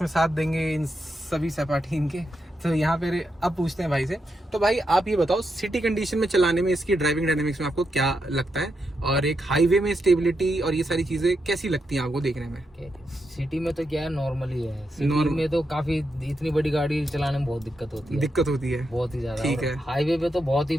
साथ देंगे इन सभी सपाटी इनके। तो यहाँ पे अब पूछते हैं भाई से। तो भाई आप ये बताओ, सिटी कंडीशन में चलाने में इसकी ड्राइविंग डायनामिक्स में आपको क्या लगता है, और एक हाईवे में स्टेबिलिटी और ये सारी चीजें कैसी लगती हैं आपको देखने में? सिटी में तो क्या है, नॉर्मल ही है। सिटी में तो काफी, इतनी बड़ी गाड़ी चलाने में बहुत दिक्कत होती है, बहुत ही ज्यादा। ठीक है, हाईवे पे तो बहुत ही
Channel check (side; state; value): both; normal; correlation 0.84